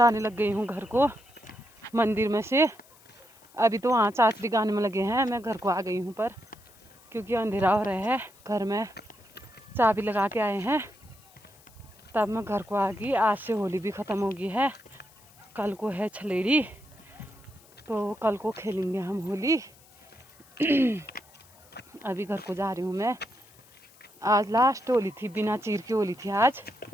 लग गई हूँ घर को मंदिर में से। अभी तो वहाँ चाचरी गाने में लगे हैं, मैं घर को आ गई हूँ पर क्योंकि अंधेरा हो रहा है। घर में चाबी लगा के आए हैं तब मैं घर को आ गई। आज से होली भी ख़त्म हो गई है, कल को है छलेड़ी तो कल को खेलेंगे हम होली। अभी घर को जा रही हूँ मैं। आज लास्ट होली थी, बिना चीर की होली थी आज।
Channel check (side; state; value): left; noise; hiss, 27 dB below the sound